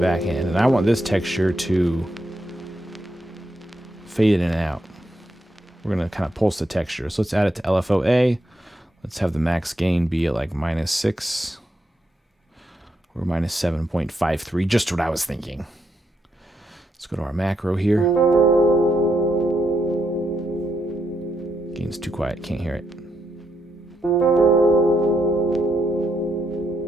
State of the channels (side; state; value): both; normal; correlation 0.80